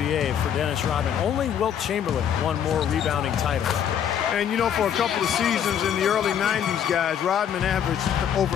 for Dennis Rodman. Only Wilt Chamberlain won more rebounding titles. And, you know, for a couple of seasons in the early 90s, guys, Rodman averaged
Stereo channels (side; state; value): right; quieter; 9.1 dB